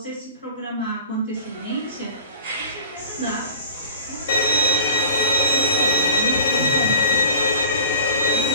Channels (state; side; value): inverted; both; correlation -0.40